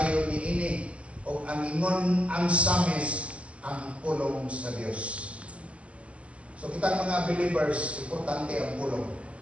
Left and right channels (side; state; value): left; late; 0.061 ms